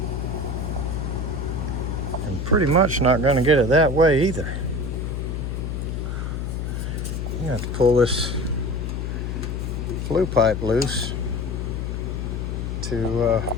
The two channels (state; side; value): noise; left; hum, 3 dB below the sound